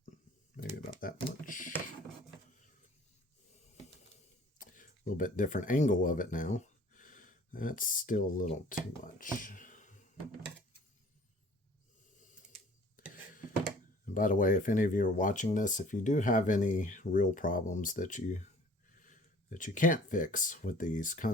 maybe about that much. A little bit different angle of it now. That's still a little too much. And by the way, if any of you are watching this, if you do have any real problems that you can't fix with these,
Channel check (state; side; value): normal; both; correlation 0.51